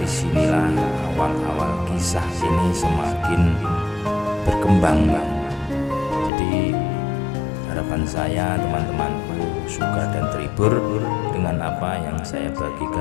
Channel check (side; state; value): right; drops out; at 6.3 s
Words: awal-awal kisah ini semakin berkembang, Bang. Jadi harapan saya teman-temanku suka dan terhibur dengan apa yang saya